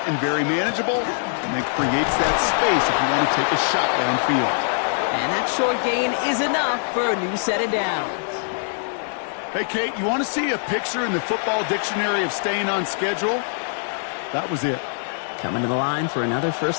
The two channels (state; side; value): silent; right; digital silence